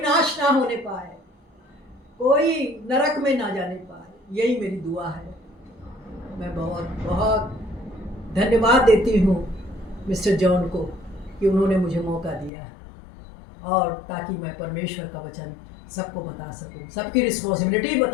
नाश ना होने पाए, कोई नरक में ना जाने पाए. यही मेरी दुआ है. मैं बहुत बहुत धन्यवाद देती हूँ मिस्टर जॉन को कि उन्होंने मुझे मौका दिया, और ताकि मैं परमेश्वर का वचन सबको बता सकूं, सबकी रिस्पॉन्सिबिलिटी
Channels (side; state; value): right; drops out; at 12.5 s